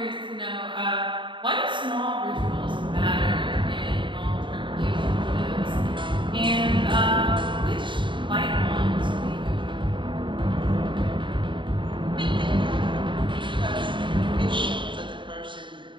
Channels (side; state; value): left; late; 0.24 ms